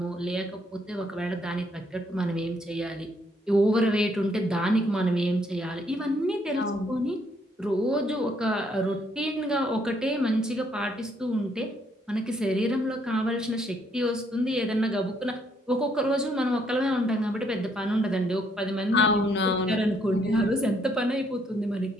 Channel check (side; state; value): both; normal; correlation 0.70